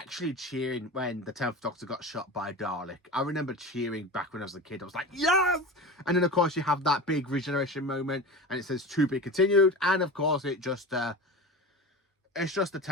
cheering when the 10th Doctor got shot by a Dalek. I remember cheering back when I was a kid. I was like, yes! And then, of course, you have that big regeneration moment, and it says to be continued. And, of course, it's just the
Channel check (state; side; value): normal; both; correlation 0.30